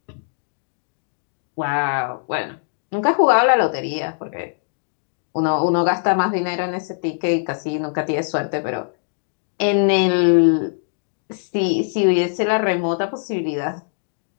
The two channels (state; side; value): silent; right; digital silence